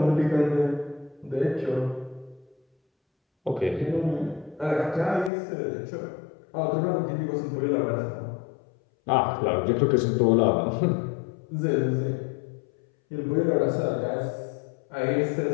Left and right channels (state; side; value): drops out; right; at 5.3 s